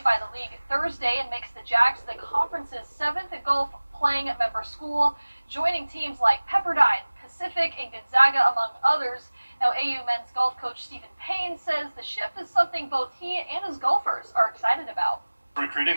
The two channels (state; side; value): inverted; both; correlation -1.00